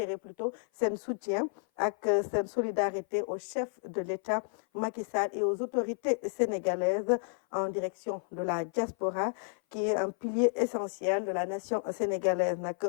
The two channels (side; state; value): right; silent; 56 dB below the other